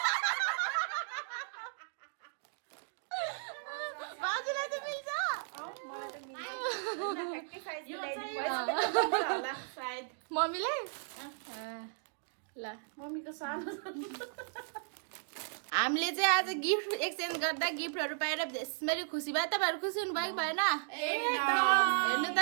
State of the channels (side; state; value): left; silent; digital silence